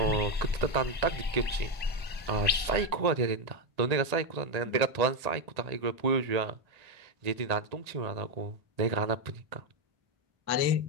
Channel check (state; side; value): late; left; 1.8 ms